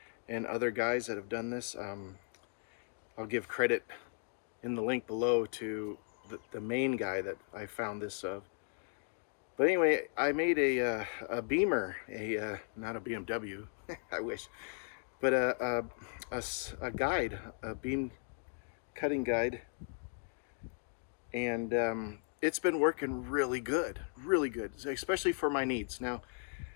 and other guys that have done this. I'll give credit in the link below to the main guy that I found this of. But anyway, I made a Beamer, not a BMW, I wish, but a guide, a beam cutting guide, and it's been working really good, especially for my needs. Now,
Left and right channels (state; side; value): silent; right; 53 dB below the other